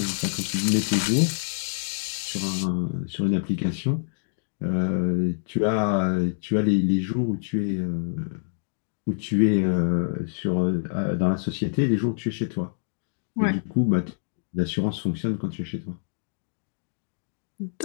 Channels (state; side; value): silent; right; digital silence